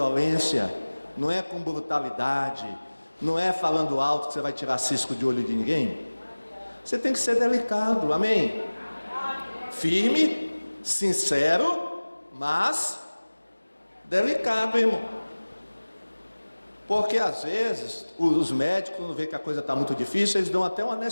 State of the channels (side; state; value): both; inverted; correlation -1.00